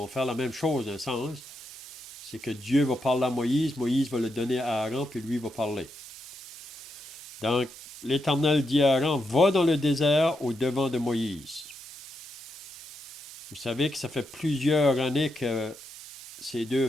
faire la même chose d'un sens. C'est que Dieu va parler à Moïse, Moïse va le donner à Aaron, puis lui va parler. Donc, l'Éternel dit à Aaron, va dans le désert au devant de Moïse. Vous savez que ça fait plusieurs années que ces deux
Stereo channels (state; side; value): normal; both; correlation 0.83